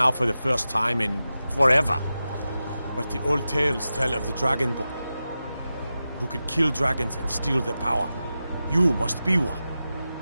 for the first time in forever. But the old tales tell of the Dragonborn who could kill dragons and steal their power. You must be one.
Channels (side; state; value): both; inverted; correlation -0.92